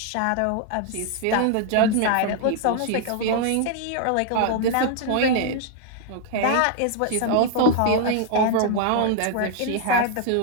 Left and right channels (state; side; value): different; both; correlation 0.00